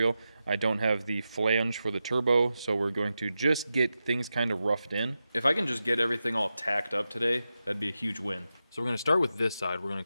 I don't have the flange for the turbo, so we're going to just get things kind of roughed in. If I can just get everything all tacked up today, that'd be a huge win. So we're going to start with this side. We're going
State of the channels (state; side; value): inverted; both; correlation -0.90